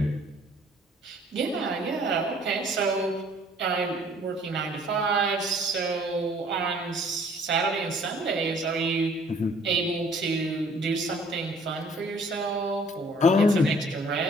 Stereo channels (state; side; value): normal; both; correlation 0.56